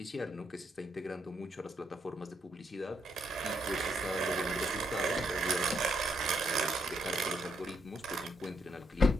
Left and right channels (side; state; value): both; normal; correlation 0.76